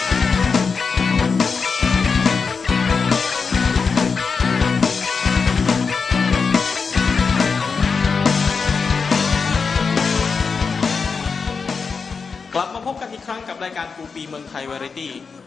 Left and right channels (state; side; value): quieter; right; 5.2 dB